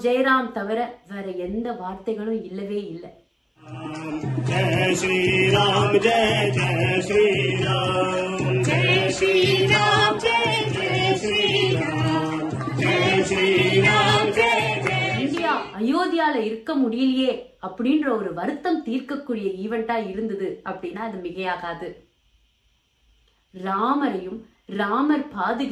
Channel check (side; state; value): both; identical; correlation 1.00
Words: ஜெயராம் தவிர வேற எந்த வார்த்தைகளும் இல்லவே இல்லை. ஜெய் ஸ்ரீராம் ஜெய் ஜெய் ஸ்ரீராம் ஜெய் ஸ்ரீராம் ஜெய் ஜெய் ஸ்ரீராம் ஜெய் ஸ்ரீராம் ஜெய் இந்தியா அயோத்தியால இருக்க முடியலையே அப்படின்ற ஒரு வருத்தம் தீர்க்கக்கூடிய ஈவெண்டா இருந்தது அப்படின்னா அது மிகையாகாது. ராமரையும் ராமர்